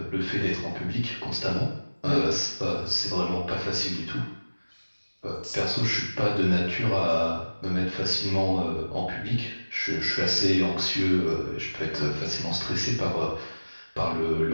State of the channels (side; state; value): both; inverted; correlation -1.00